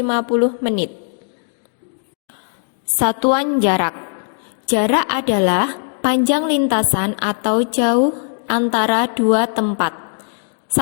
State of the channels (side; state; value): right; silent; digital silence